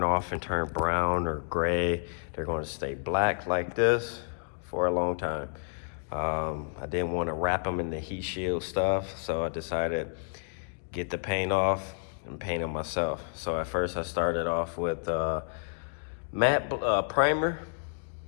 off and turn brown or gray. They're gonna stay black like this for a long time. I didn't want to wrap them in the heat shield stuff, so I decided get the paint off and paint them myself. So at first I started off with matte primer,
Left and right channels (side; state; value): right; silent; digital silence